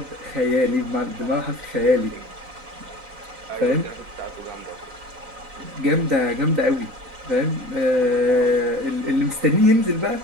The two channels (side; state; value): left; late; 4.0 ms